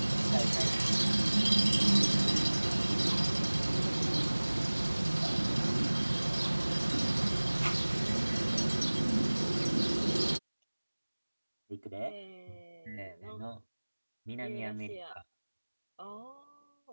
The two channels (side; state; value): both; inverted; correlation -1.00